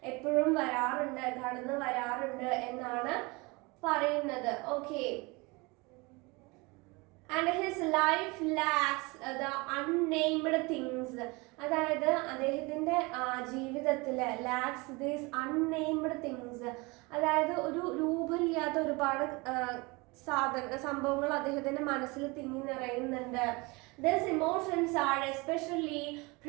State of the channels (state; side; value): quieter; left; 25.9 dB